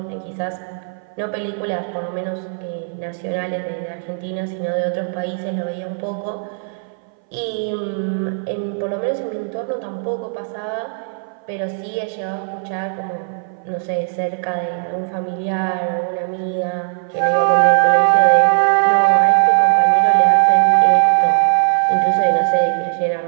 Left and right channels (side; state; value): left; silent; 62 dB below the other